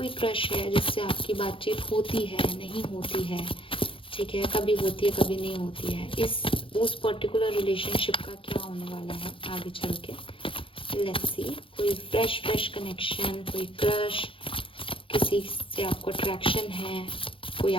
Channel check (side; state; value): right; late; 0.25 ms